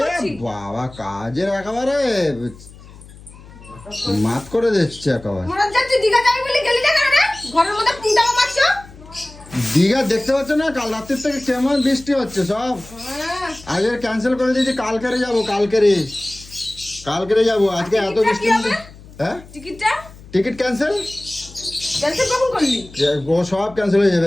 করছি। বাবা কাজের একেবারে মাত করে দিচ্ছে একেবারে। মোরা যাচ্ছি দীঘা যাবি বলে গেলি না কেন রে? ঘরের মধ্যে পুঁটাও মারছো। দীঘা দেখতে পাচ্ছ না কাল রাত্রির থেকে কেমন বৃষ্টি হচ্ছে সব। আগে ক্যান্সেল করে দিয়েছি, কালকেরে যাবো। কালকেরে যাবো, আজকে এত বৃষ্টি। হ্যাঁ টিকিটটা টিকিট ক্যান্সেল ক্যান্সেল কখন করলি? ও সব ক্যান্সেল হয়ে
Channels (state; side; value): noise; left; hum, 20 dB below the sound